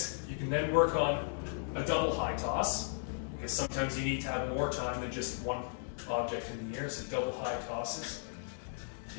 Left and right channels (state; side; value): silent; right; digital silence